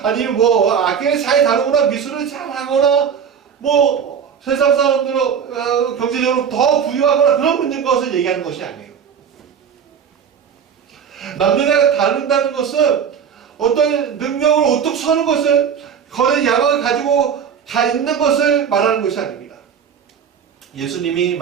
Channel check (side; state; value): left; quieter; 7.5 dB